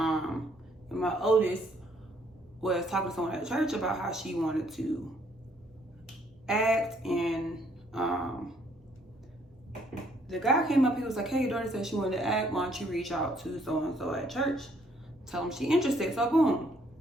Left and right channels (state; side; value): normal; both; correlation 0.67